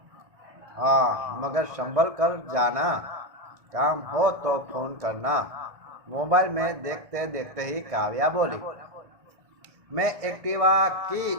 हाँ, मगर संभल कर जाना। काम हो तो फोन करना। मोबाइल में देखते देखते ही काव्या बोली। मैं एक्टिवा की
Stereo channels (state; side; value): late; left; 1.6 ms